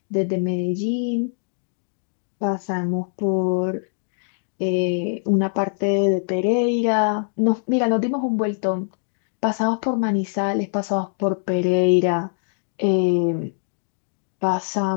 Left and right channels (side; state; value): right; silent; 63 dB below the other